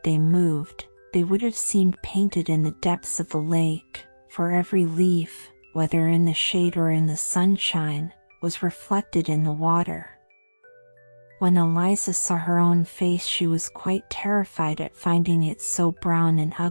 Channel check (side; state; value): both; inverted; correlation -1.00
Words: they moved, they would have seemed painted in the depths of the lake, for every leaf, whether in the shade or in the sunshine, was reflected in the water. When Eliza saw her own face she was quite terrified at finding it so brown and